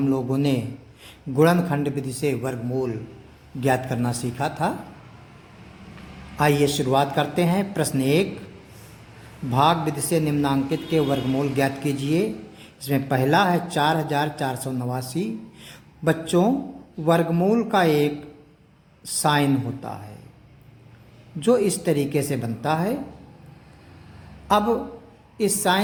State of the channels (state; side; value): identical; both; correlation 1.00